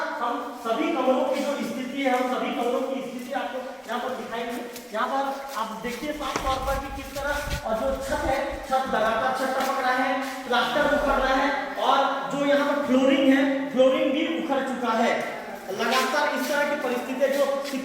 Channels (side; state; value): both; identical; correlation 1.00